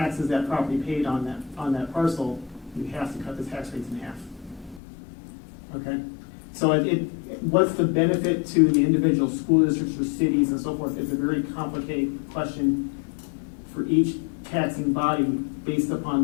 that property paid on that parcel, you have to cut the tax rates in half. Okay? So what's the benefit to the individual school districts or cities and so forth? It's a very complicated question for each taxing body based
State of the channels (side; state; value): right; drops out; at 4.8 s